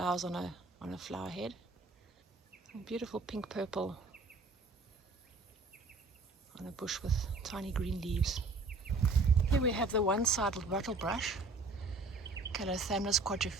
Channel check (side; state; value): left; quieter; 3.6 dB